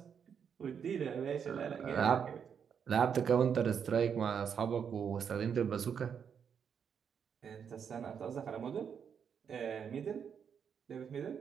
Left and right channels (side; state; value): left; quieter; 7.3 dB